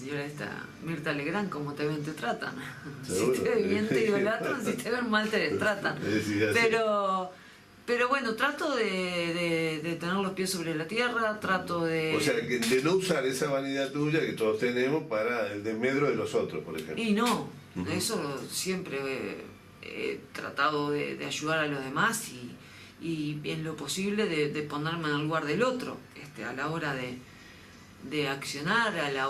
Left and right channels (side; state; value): both; identical; correlation 1.00